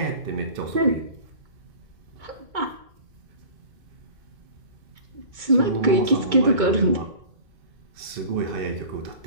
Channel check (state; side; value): late; left; 2.2 ms